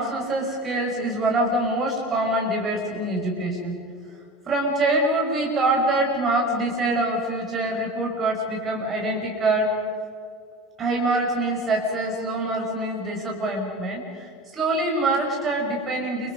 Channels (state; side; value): normal; both; correlation 0.33